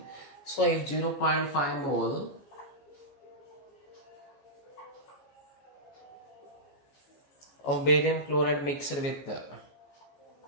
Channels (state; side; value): late; right; 14 ms